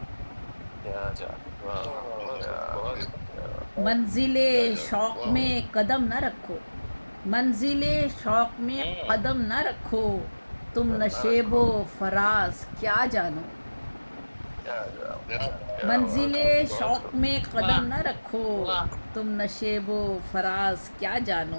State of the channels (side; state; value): both; inverted; correlation -1.00